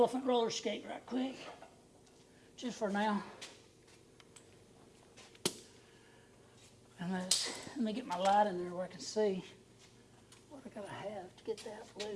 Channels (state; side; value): identical; both; correlation 1.00